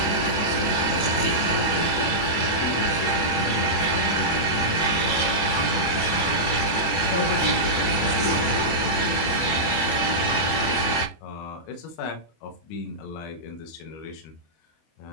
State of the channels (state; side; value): late; right; 24 ms